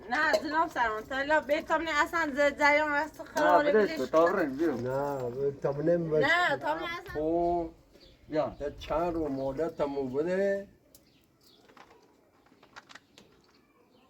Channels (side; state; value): both; identical; correlation 1.00